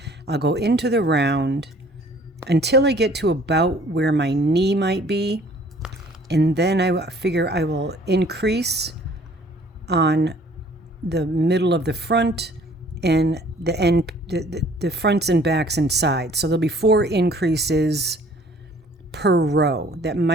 I'll go into the round until I get to about where my knee might be. And then I figure I will increase on the middle of the front and the end, the fronts and backs and sides. So there'll be 4 increases per row. That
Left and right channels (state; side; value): normal; both; correlation 0.55